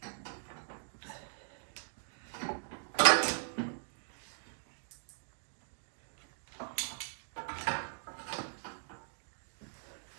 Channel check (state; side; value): silent; left; digital silence